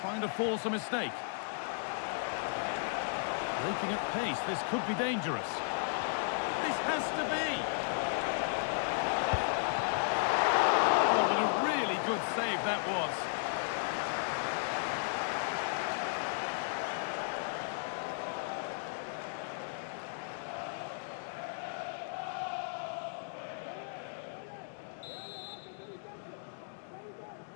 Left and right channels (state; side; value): silent; right; digital silence